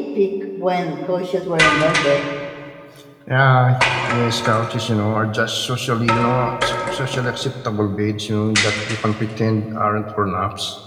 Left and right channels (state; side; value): identical; both; correlation 1.00